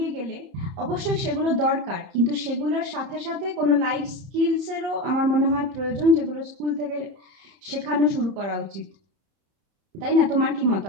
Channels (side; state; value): left; late; 30 ms